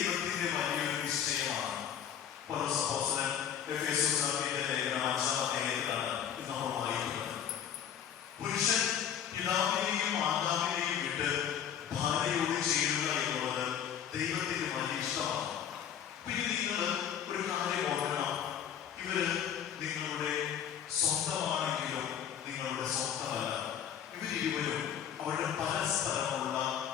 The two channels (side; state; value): right; quieter; 9.0 dB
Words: വലിയൊരു നിശ്ചയമാണ്. പൗലോസ് എഫേസ്യരുടെ ലേഖനം 5-ാം അധ്യായത്തിലാണ് ഇത് നമ്മൾ വായിക്കുന്നത്. പുരുഷൻ പിതാവിനെയും മാതാവിനെയും വിട്ട് ഭാര്യയോട് ചേരുക എന്നുള്ളത് ദൈവത്തിന്റെ വലിയ ഇഷ്ടമാണ്. പിന്നെ നിങ്ങൾ ഒരു കാര്യം ഓർക്കണം, ഇവര് നിങ്ങളുടെ സ്വന്തമാണെങ്കിലും നിങ്ങളുടെ സ്വന്തമല്ല. ഇവരിരുവരും അവരുടെ പരസ്പരമുള്ള